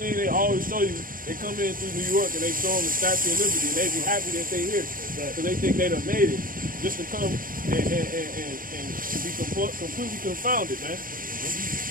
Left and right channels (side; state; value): left; late; 0.41 ms